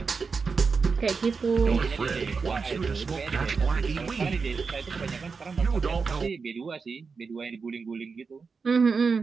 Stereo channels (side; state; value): left; quieter; 5.0 dB